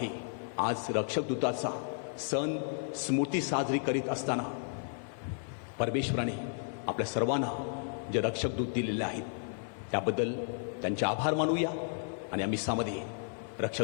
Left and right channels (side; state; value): right; silent; 56 dB below the other